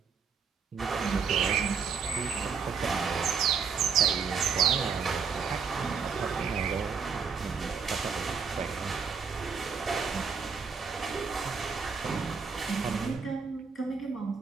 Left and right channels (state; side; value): quieter; left; 5.9 dB